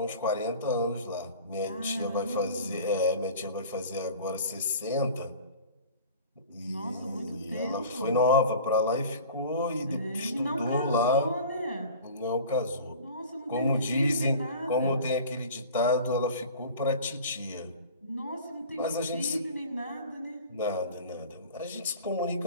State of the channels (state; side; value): inverted; both; correlation -0.41